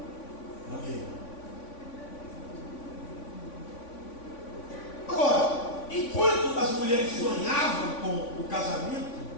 Amém. Agora, enquanto as mulheres sonhavam com o casamento,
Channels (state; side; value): late; right; 3.5 ms